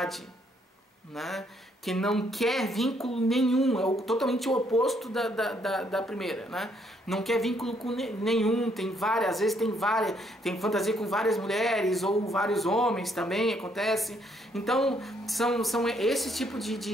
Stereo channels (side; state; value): both; normal; correlation 0.70